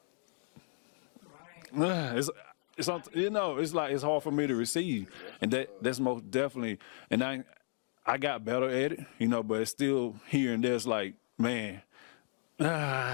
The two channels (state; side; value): silent; right; 55 dB below the other